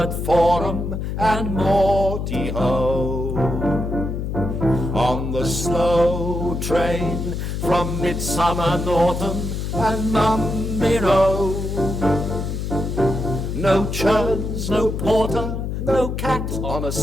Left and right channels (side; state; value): left; noise; hum, 3 dB below the sound